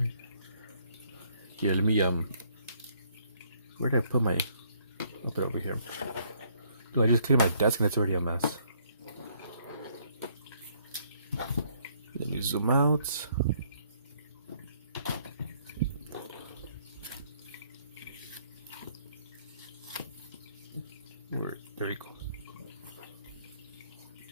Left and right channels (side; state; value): both; inverted; correlation -0.66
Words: Here, let me where did I put my? I'll put it over here. Do I just clear my desk and it's already a mess? Let me zoom out. There you go.